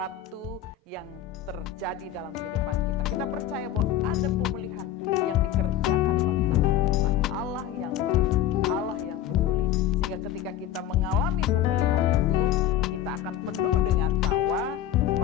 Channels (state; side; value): quieter; right; 11.0 dB